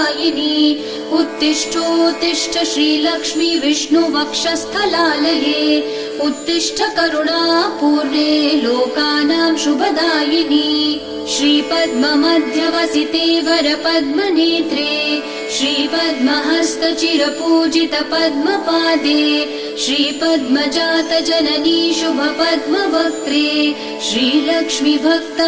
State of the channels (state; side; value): identical; both; correlation 1.00